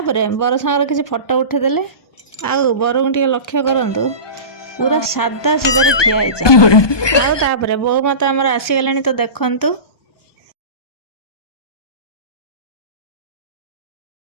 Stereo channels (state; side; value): late; right; 1.2 ms